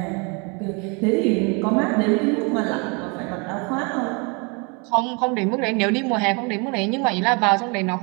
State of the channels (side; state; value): left; quieter; 32.0 dB